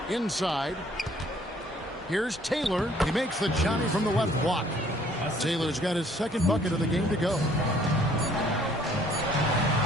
Inside. Here's Taylor. He makes the Johnny from the left block. Taylor's got his second bucket of the game to go.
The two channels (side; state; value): both; normal; correlation 0.60